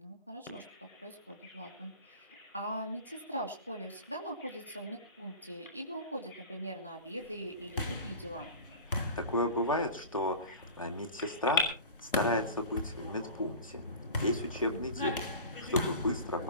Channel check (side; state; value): both; inverted; correlation -0.35